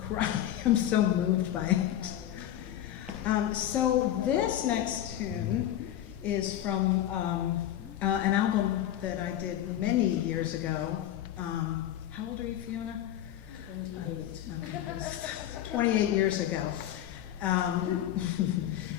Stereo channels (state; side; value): quieter; right; 11.9 dB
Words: cry. I'm so moved by it. So this next tune is from an album that I did many years ago. How old are you, Fiona? 28 years ago.